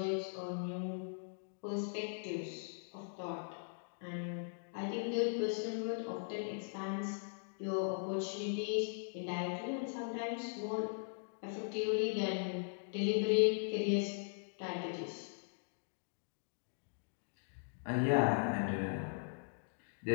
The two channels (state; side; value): silent; right; digital silence